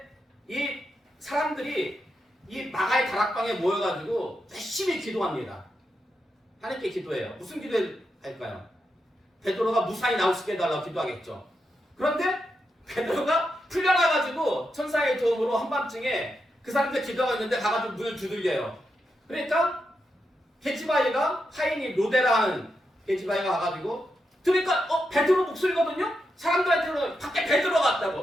이 사람들이 이 마가의 다락방에 모여가지고 열심히 기도합니다. 하나님께 기도해요. 무슨 기도할까요? 베드로가 무사히 나올 수 있게 해달라고 기도하겠죠. 그런데 베드로가 풀려나가지고 천사의 도움으로 한밤중에 그 사람들 기도하고 있는데 가가지고 문을 두들겨요. 그러니까 게지바이가 파이니 로데라는 게지바이가 와가지고 들으니까 베드로 목소리거든요. 사람들한테 밖에 베드로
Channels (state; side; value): normal; both; correlation 0.85